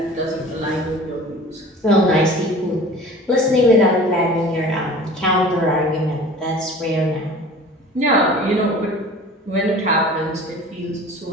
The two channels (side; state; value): both; normal; correlation 0.43